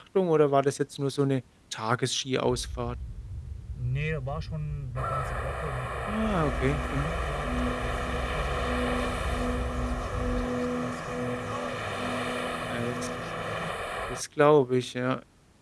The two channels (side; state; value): both; identical; correlation 1.00